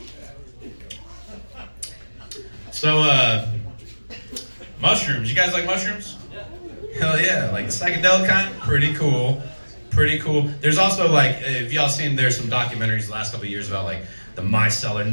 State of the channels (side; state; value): both; inverted; correlation -1.00